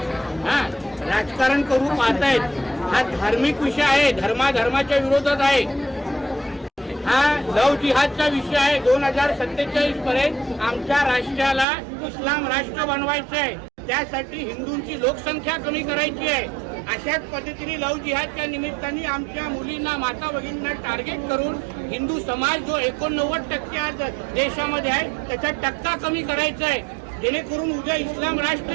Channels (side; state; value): left; drops out; at 11.7 s